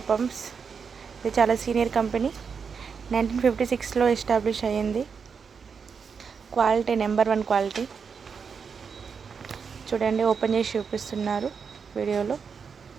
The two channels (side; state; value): left; quieter; 6.0 dB